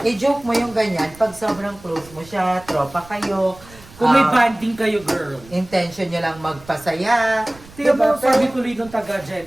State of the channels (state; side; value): noise; right; rumble, 22 dB below the sound